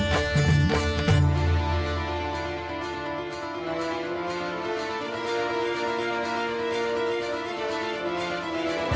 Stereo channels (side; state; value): both; identical; correlation 1.00